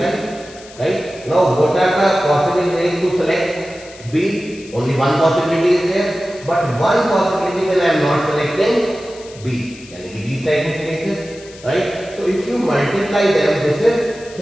Right? Now what are the possible ways to select B? Only one possibility is there. But one possibility when I am not selecting B. And these type of cases. Right? So if you multiply them, this is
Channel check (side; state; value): left; noise; hiss, 20 dB below the sound